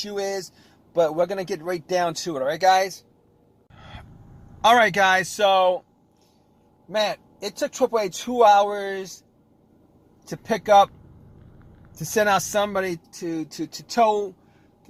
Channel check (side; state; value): both; identical; correlation 1.00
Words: is, but we're going to get right down to it. All right, guys? All right, guys. So, man, it took AAA 2 hours to pick up, to send out somebody to tow